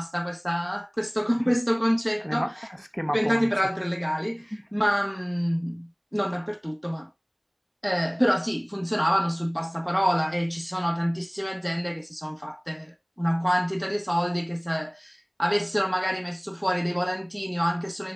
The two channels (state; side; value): identical; both; correlation 1.00